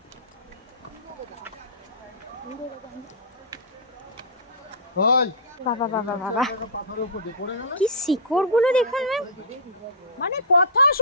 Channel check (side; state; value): both; normal; correlation -0.16